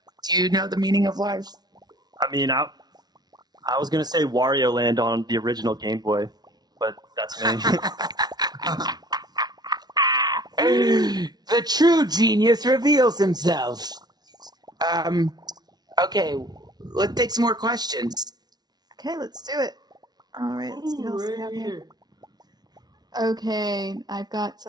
Do you know the meaning of life? I mean, I was gonna say Wario Land on the original Game Boy, but that's me. The true genius reveals himself. Okay, let's take some more questions. Okay, let's do it. All right, let's see what else we Right have here. here. Okay, I've got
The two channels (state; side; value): late; left; 0.19 ms